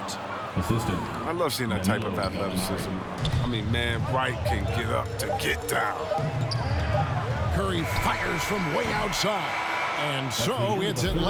Assistant. I love seeing that type of athleticism. I mean, man, Wright can get up to get down. Curry fires from way outside. And so it's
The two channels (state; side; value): identical; both; correlation 1.00